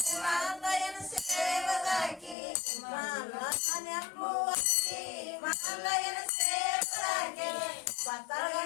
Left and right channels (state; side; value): drops out; right; at 2.4 s